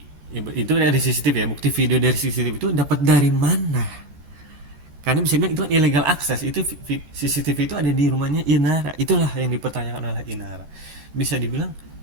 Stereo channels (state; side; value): late; left; 14 ms